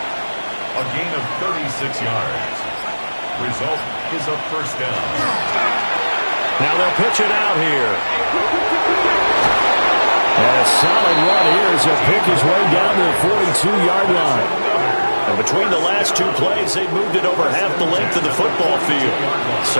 a gain of 36 yards. Result is a first down. Now they'll pitch it out here. And a solid run here as he'll pick his way down to the 42-yard line. And between the last two plays, they moved it over half the length of the football field.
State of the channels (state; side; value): inverted; both; correlation -1.00